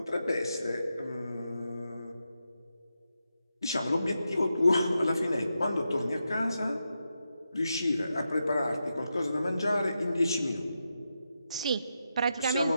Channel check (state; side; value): inverted; both; correlation -0.87